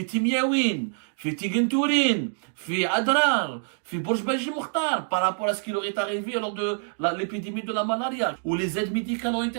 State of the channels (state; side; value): silent; left; 61 dB below the other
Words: Timiaouine, fi Tigentourin, fi Adrar, fi Bourj-Belgi Mokhtar, par rapport à ce qui leur est arrivé lors de l'épidémie de la malaria, où les aides médicales ont été